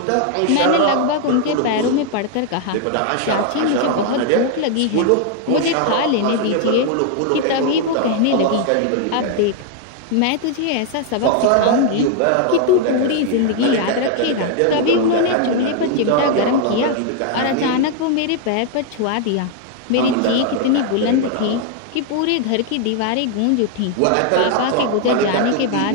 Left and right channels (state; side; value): different; both; correlation 0.00